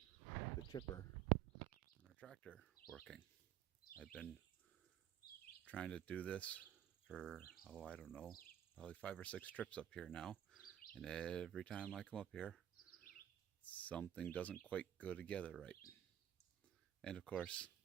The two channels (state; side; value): quieter; left; 10.8 dB